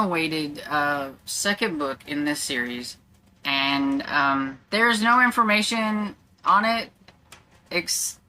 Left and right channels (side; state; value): both; identical; correlation 1.00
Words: second book in this series, and there's no information on it,